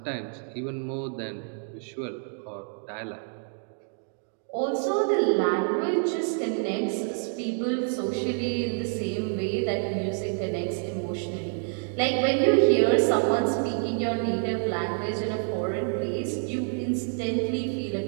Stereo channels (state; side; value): silent; left; 60 dB below the other